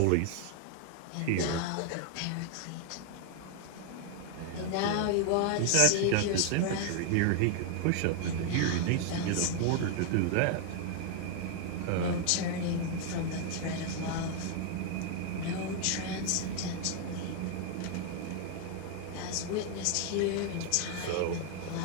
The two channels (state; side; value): different; both; correlation 0.00